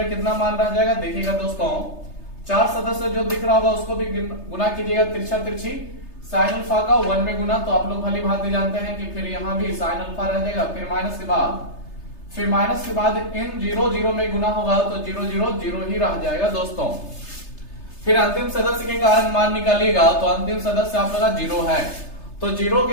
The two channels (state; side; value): late; right; 3.3 ms